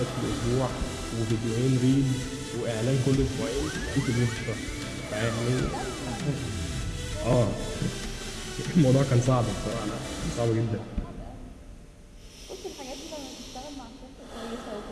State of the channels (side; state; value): both; identical; correlation 1.00